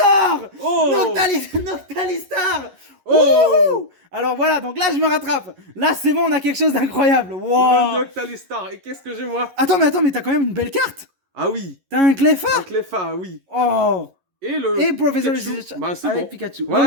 Oh Noctalistar! Oh! Wouhou! Alors voilà, donc là je me rattrape. Là c'est bon, on a quelque chose d'incroyable. Le Wow! Noctalistar. Et qu'est-ce que j'ai moi? Attends, mais t'as quand même une belle carte. Ah oui. T'as un Cleffa. Un Cleffa, oui. Oh. Et le Et Professor Pikachu. Lich Bah, c'est avec bon. Pikachu. Voilà,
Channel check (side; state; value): left; late; 11 ms